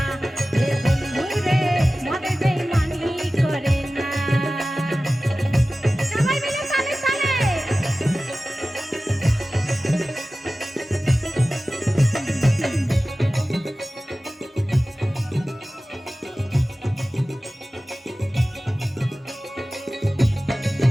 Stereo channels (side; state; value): both; normal; correlation 0.96